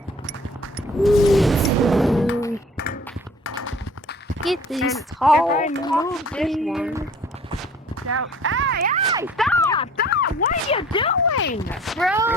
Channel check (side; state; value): both; normal; correlation 0.50